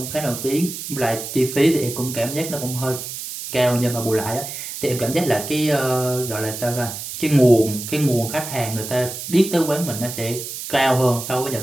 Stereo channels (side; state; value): right; noise; hiss, 8 dB below the sound